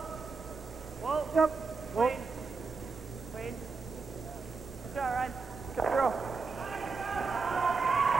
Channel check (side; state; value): left; quieter; 4.5 dB